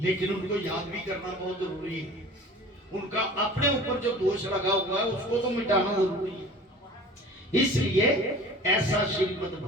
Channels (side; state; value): both; normal; correlation 0.43